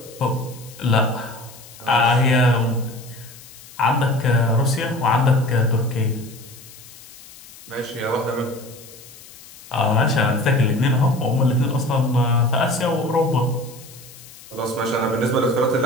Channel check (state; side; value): noise; left; hiss, 20 dB below the sound